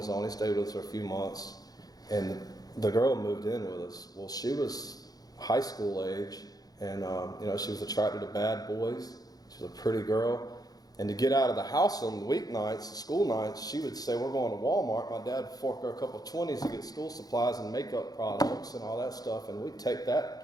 own. He stayed with us for a few months. And the girl moved in with us. Well, she was high school age. And, she was attracted to bad boys. She was a pretty girl. And to get out of the house on the weeknights, school nights, she would say, we're going to Walmart. My dad would fork her a couple of 20s to get school supplies and makeup products and all that stuff. And we'd take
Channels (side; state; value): right; late; 0.18 ms